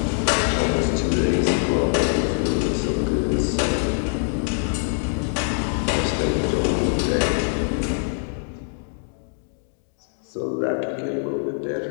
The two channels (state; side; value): silent; right; digital silence